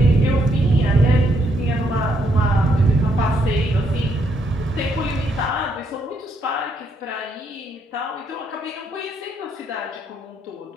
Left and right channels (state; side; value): normal; both; correlation 0.74